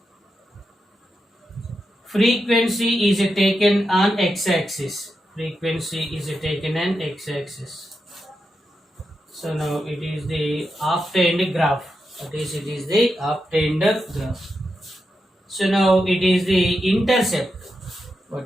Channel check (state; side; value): normal; both; correlation 0.87